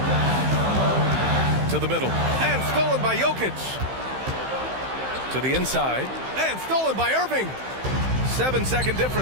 To the middle. And stolen by Jokic. To the inside. And stolen by Irving. 7-second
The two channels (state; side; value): late; left; 15 ms